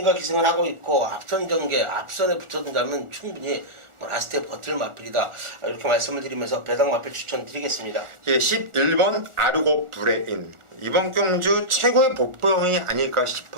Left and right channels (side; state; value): left; late; 1.4 ms